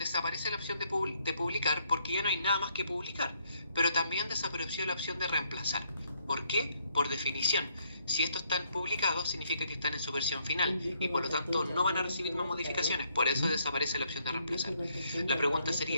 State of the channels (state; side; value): inverted; both; correlation -0.71